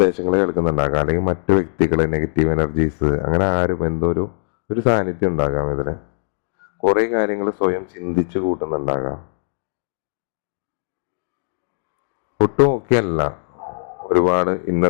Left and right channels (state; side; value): silent; right; digital silence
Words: കേൾക്കുന്നുണ്ടാകാം, അല്ലെങ്കിൽ മറ്റു വ്യക്തികളെ, നെഗറ്റീവ് എനർജീസ്, അങ്ങനെ ആരും എന്തോ ഒരു സാന്നിധ്യം ഉണ്ടാകാം. ഇതിന് കുറെ കാര്യങ്ങൾ സ്വയം ചിന്തിച്ചു കൂട്ടുന്നുണ്ടാകാം. ഒട്ടും ഒക്കെ അല്ല, ഒരുപാട്